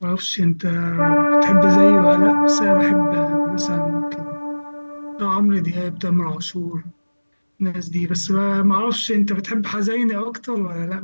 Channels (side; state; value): both; inverted; correlation -1.00